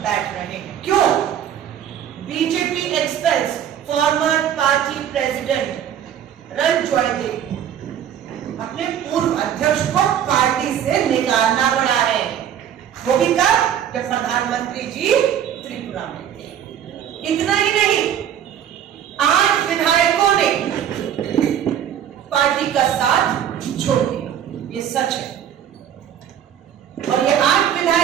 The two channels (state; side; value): quieter; left; 9.7 dB